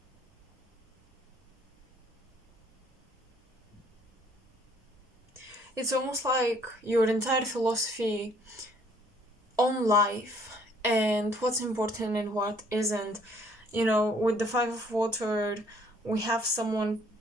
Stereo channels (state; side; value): normal; both; correlation 0.61